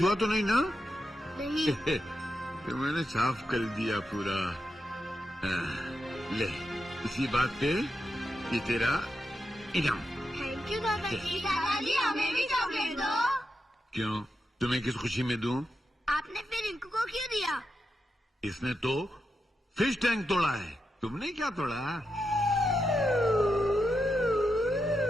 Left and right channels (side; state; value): both; normal; correlation 0.87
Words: हुआ तो नहीं ना? नहीं। तो मैंने साफ कर दिया पूरा। ले, इसी बात पे ये तेरा इनाम। थैंक यू दादाजी। दादाजी, हमें भी चॉकलेट दो। क्यों, तुम्हें किस खुशी में दूं? आपने फिर रिंकू को क्यों दिया? इसने तो फिश टैंक तोड़ा है, तुमने क्या तोड़ा?